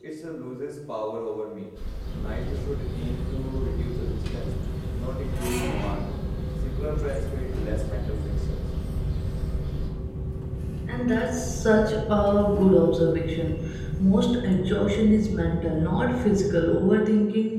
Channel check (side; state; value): both; identical; correlation 1.00